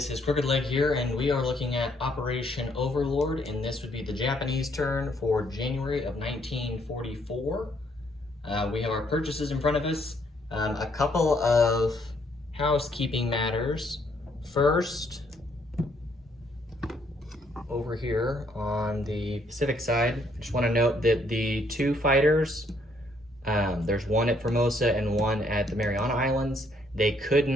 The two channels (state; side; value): normal; both; correlation 0.69